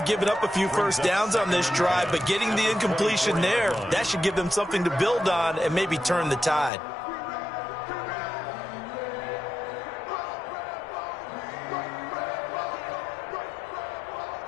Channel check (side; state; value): right; drops out; at 6.7 s